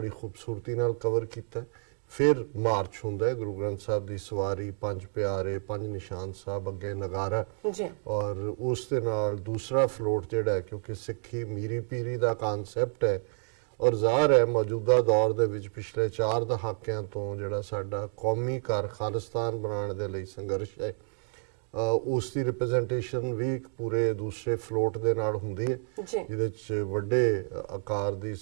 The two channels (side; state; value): left; silent; digital silence